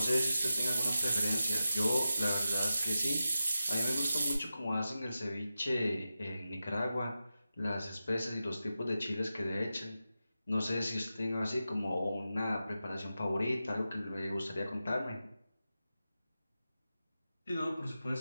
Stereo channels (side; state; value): both; inverted; correlation -0.92